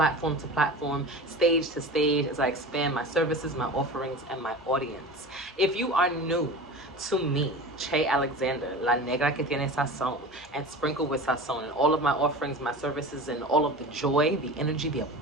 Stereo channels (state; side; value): normal; both; correlation 0.33